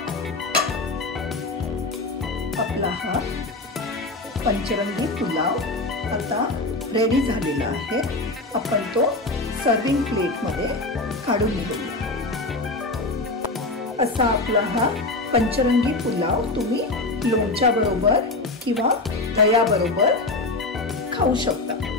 आपला हा पंचरंगी पुलाव आता रेडी झालेला आहे. आपण तो सर्विंग प्लेटमध्ये काढून घेऊया. असा आपला हा पंचरंगी पुलाव तुम्ही लोणच्या बरोबर किंवा दह्याबरोबर खाऊ शकता.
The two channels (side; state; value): right; quieter; 3.0 dB